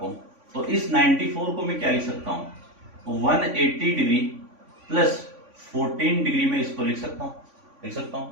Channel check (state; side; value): late; left; 3.5 ms